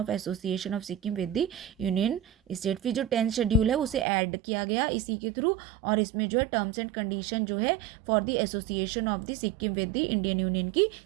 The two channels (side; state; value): left; drops out; at 4.0 s